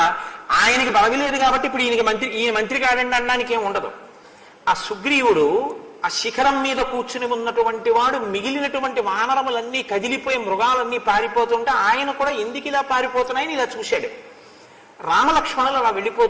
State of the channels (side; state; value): both; identical; correlation 1.00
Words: ఆయనకి పదవి లేదు కాబట్టి ఇప్పుడు ఈయన మంత్రి కాడండి అనడానికి ఏం ఉండదు. ఆ సుగ్రీవుడు ఆ శిఖరం మీద కూర్చుని ఉన్నటువంటి వాడు మిగిలినటువంటి వానరములన్నీ కదిలిపోయి మృగాలన్నీ పారిపోతుంటే ఆయన కూడా ఎందుకు ఇలా పారిపోతున్నాయని ఇలా చూశాడు. రామలక్ష్మణులు అలా